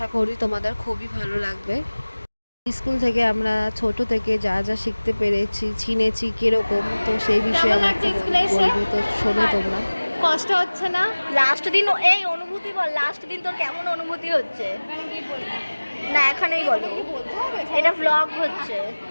করি তোমাদের খুবই ভালো লাগবে। স্কুল থেকে আমরা ছোট থেকে যা যা শিখতে পেরেছি, চিনেছি কিরকম, তো সেই বিষয়ে কেমন আমাকে লাগছে স্কুলে এসে? বলবো। তো শোনো তোমরা। কষ্ট হচ্ছে না? লাস্ট দিন এই অনুভূতি বল, লাস্ট দিন তোর কেমন অনুভূতি হচ্ছে? না এখানেই বলো, এটা ব্লগ হচ্ছে।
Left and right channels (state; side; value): inverted; both; correlation -1.00